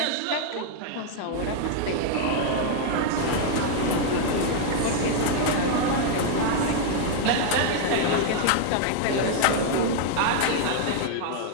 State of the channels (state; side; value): different; both; correlation 0.00